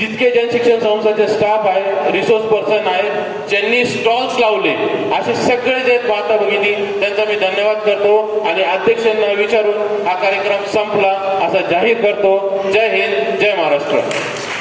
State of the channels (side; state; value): both; identical; correlation 1.00